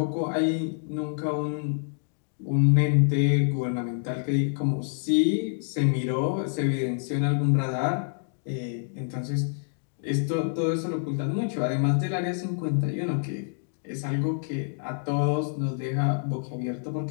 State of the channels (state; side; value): silent; right; digital silence